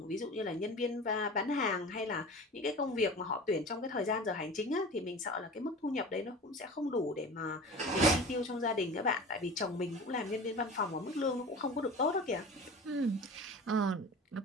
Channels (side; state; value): both; normal; correlation 0.36